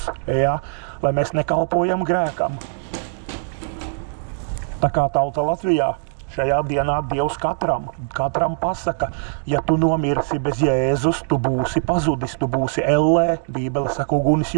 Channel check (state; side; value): silent; left; digital silence